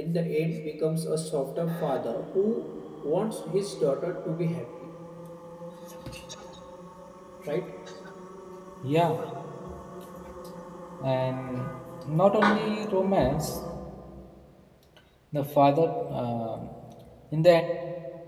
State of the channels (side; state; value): both; identical; correlation 1.00